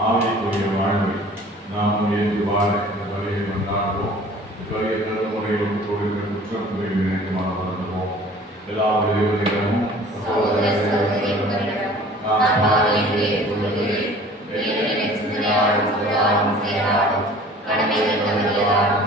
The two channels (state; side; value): normal; both; correlation 0.47